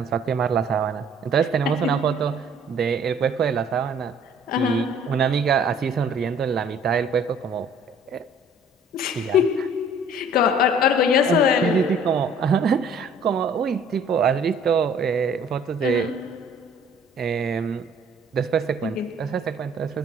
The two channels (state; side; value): normal; both; correlation 0.55